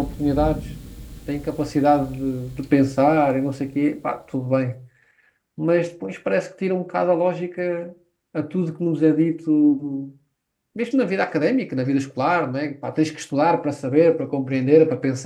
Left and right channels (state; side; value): identical; both; correlation 1.00